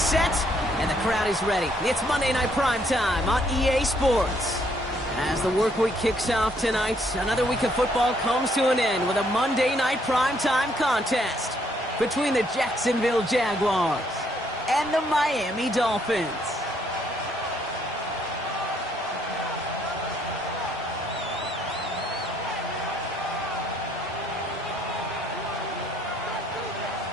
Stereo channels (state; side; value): normal; both; correlation 0.69